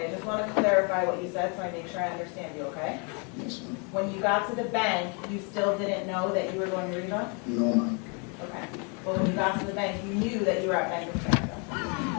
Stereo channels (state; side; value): quieter; right; 35.5 dB